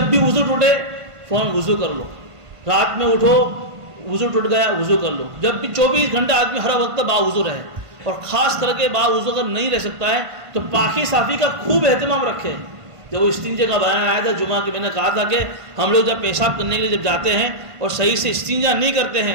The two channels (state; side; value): late; left; 1.5 ms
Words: بھی وضو ٹوٹے فوراً وضو کر لو، رات میں اٹھو وضو ٹوٹ گیا وضو کر لو۔ جب بھی 24 گھنٹے آدمی ہر وقت باوضو رہے، اور خاص کر کے باوضو اگر نہیں رہ سکتا ہے تو پاکی صافی کا خوب اہتمام رکھے۔ جب وہ استنجے کا بیان آیا تھا جمعہ کے، میں نے کہا تھا کہ ہم لوگ جب پیشاب کرنے کے لیے جب جاتے ہیں اور صحیح سے استنجا نہیں کرتے